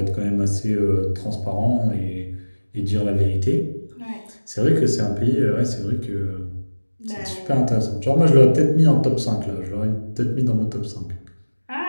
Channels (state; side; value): inverted; both; correlation -1.00